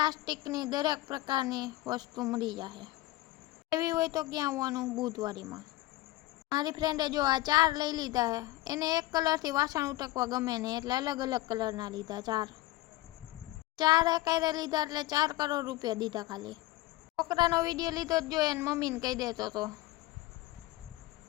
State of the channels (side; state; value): right; quieter; 17.5 dB